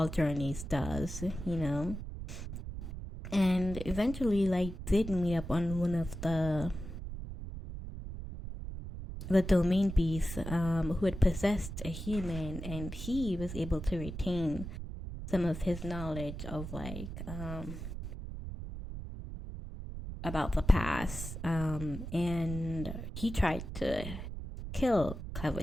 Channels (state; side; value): noise; right; rumble, 8 dB below the sound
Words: journeys does, and eventually like did meet up on one of the domain beasts who had possessed a human, and he was able to retain some of his knowledge of like about the past, and he tried to kill